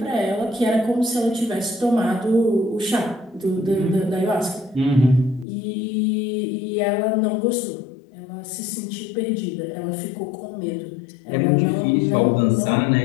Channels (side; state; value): right; drops out; at 5.5 s